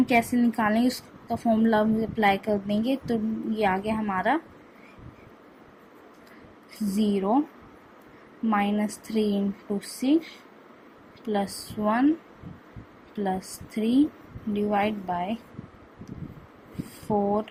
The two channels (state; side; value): identical; both; correlation 1.00